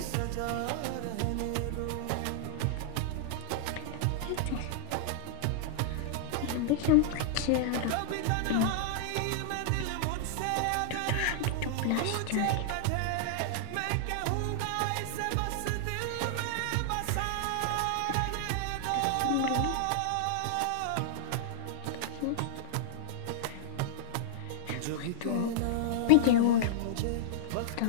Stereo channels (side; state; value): both; different; correlation -0.01